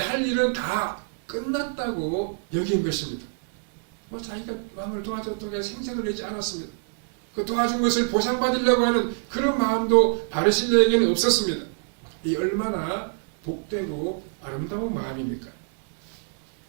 일은 다 끝났다고 여긴 것입니다. 자기가 왕을 도와줬다고 생색을 내지 않았습니다. 그 도와준 것을 보상받으려고 하는 그런 마음도 바르실레에게는 없었습니다. 이 얼마나 복되고 아름다운 마음입니까?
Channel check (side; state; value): left; silent; digital silence